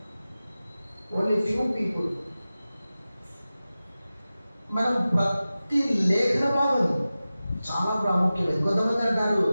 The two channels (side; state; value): both; inverted; correlation -0.95